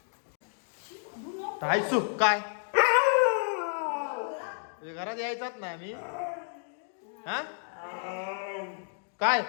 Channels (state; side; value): silent; right; digital silence